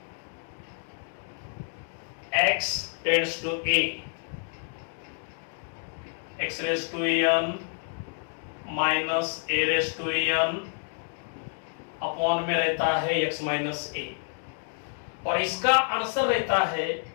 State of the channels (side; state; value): right; silent; 56 dB below the other